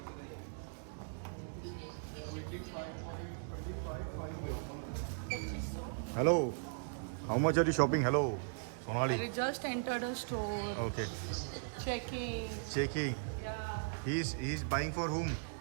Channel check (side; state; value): left; silent; digital silence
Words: Hello, how much are you shopping? Hello Sonali. We just entered a store. Okay. Checking. Checking. Yeah. He is buying for whom?